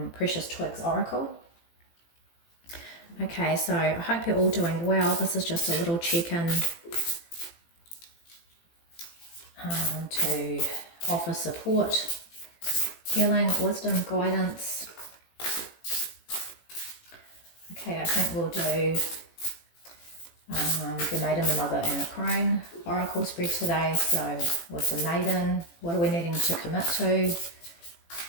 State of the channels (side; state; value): right; late; 18 ms